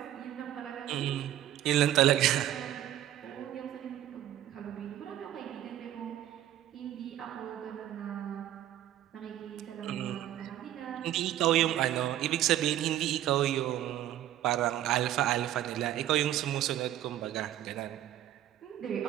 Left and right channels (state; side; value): quieter; left; 12.5 dB